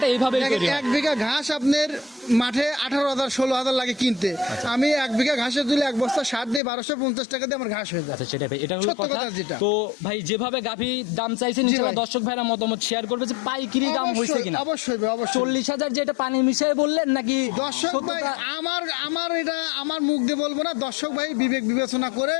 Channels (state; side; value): drops out; right; at 6.6 s